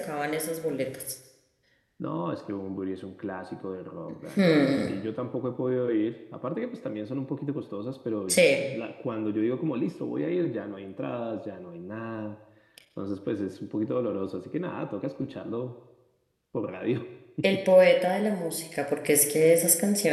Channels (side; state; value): both; identical; correlation 1.00